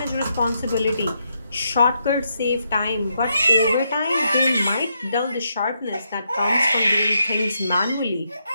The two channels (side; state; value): both; inverted; correlation -0.80